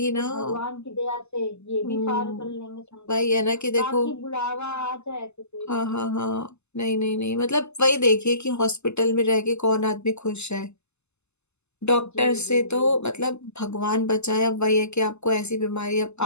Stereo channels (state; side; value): late; right; 0.81 ms